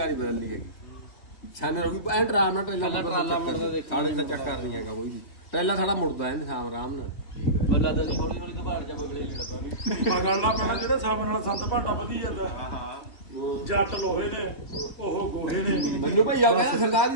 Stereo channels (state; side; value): late; right; 2.7 ms